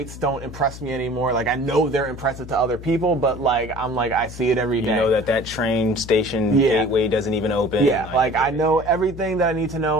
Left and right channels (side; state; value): left; noise; hum, 13 dB below the sound